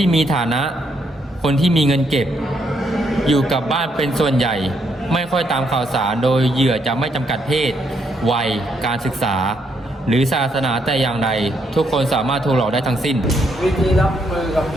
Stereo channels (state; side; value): normal; both; correlation 0.75